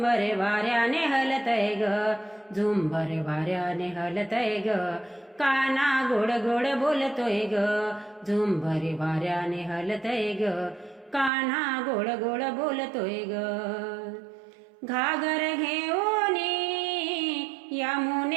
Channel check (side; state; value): left; drops out; at 11.3 s